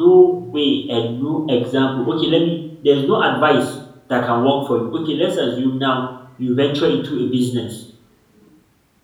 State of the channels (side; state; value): both; identical; correlation 1.00